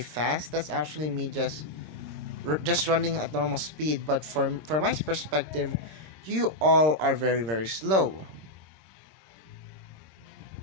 fast, that's actually me just running at normal speed. But from my perspective, you all are very very slow.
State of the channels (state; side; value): late; left; 26 ms